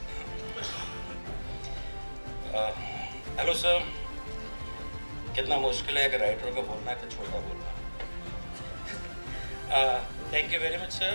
Hello sir, कितना मुश्किल है कि राइटर को बोलना है तो छोटा बोलना. Thank you very much sir.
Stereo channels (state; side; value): inverted; both; correlation -1.00